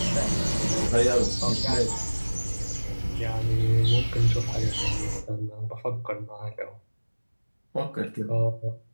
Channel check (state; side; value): inverted; both; correlation -1.00